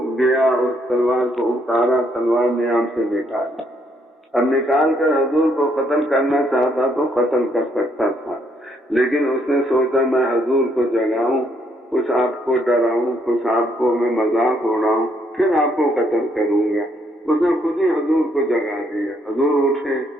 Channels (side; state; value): both; normal; correlation 0.72